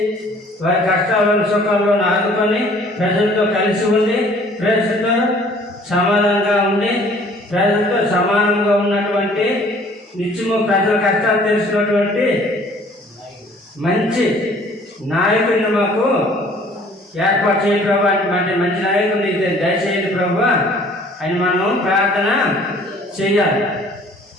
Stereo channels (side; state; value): both; normal; correlation 0.54